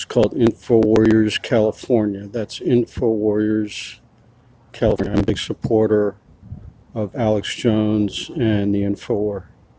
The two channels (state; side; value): identical; both; correlation 1.00